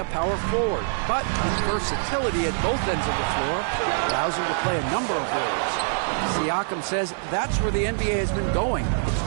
power forward, but his versatility at both ends of the floor allows him to play a number of roles. Siakam says that's where the NBA has been going. It's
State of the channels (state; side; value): silent; left; digital silence